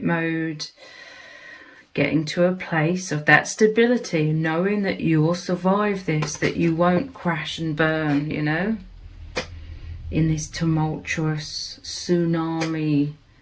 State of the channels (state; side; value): identical; both; correlation 1.00